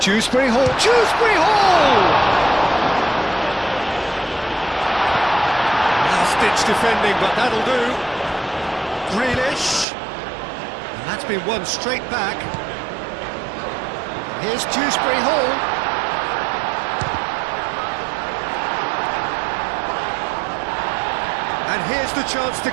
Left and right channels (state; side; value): drops out; left; at 9.9 s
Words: Hall. Dewsbury Hall! Last-ditch defending, but that'll do. Grealish. And that's been won straight back. Here's Dewsbury Hall. And here's the chance to